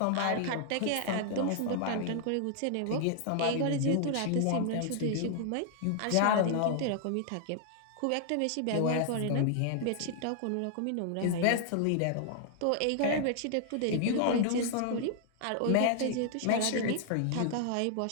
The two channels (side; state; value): both; different; correlation -0.01